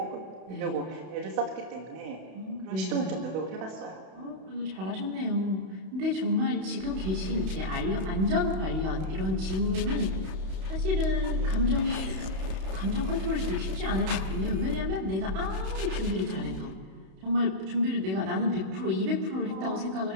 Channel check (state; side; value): late; left; 31 ms